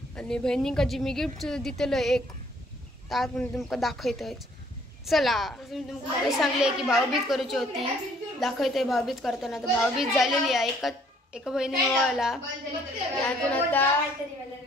आणि बहिणींका जी मी गिफ्ट दिलेलं एक त्यात मी तुमका दाखवतोय। चला मी तुमका सांगले की भाऊबीज करूची होती, दाखवतोय भाऊबीज करताना। तर भाऊबीज झालेली आहे, एका बहिणीने ओवाळला, त्यातून आता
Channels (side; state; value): both; normal; correlation 0.62